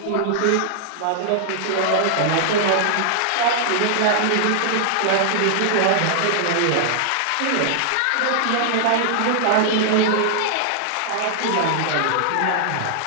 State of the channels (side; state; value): both; different; correlation -0.01